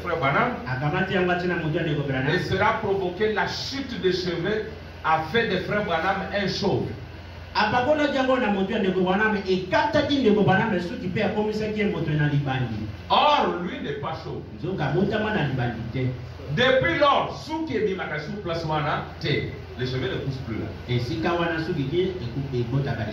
Branham. Et cela a provoqué la chute des cheveux, a fait de frère Branham un chauve. Or, lui n'est pas chauve. Depuis lors, les cheveux ne poussent plus là.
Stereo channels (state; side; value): identical; both; correlation 1.00